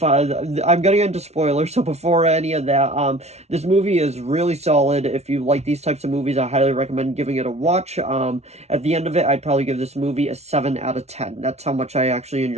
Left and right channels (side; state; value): left; late; 0.31 ms